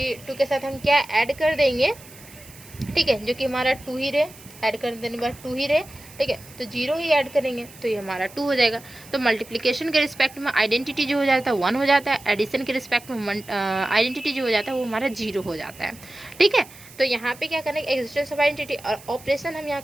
2 के साथ हम क्या ऐड कर देंगे, ठीक है, जो कि हमारा 2 ही रहे, ऐड कर देने के बाद 2 ही रहे, ठीक है, तो 0 ही ऐड करेंगे तो ये हमारा 2 हो जाएगा। तो मल्टीप्लिकेशन के रिस्पेक्ट में आइडेंटिटी जो हो जाता है 1 हो जाता है, एडिशन के रिस्पेक्ट में आइडेंटिटी जो हो जाता है वो हमारा 0 हो जाता है, ठीक है। तो यहाँ पे क्या करना है, एग्जिस्टेंस ऑफ आइडेंटिटी। और ऑपरेशन हम यहाँ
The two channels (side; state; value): right; noise; hiss, 20 dB below the sound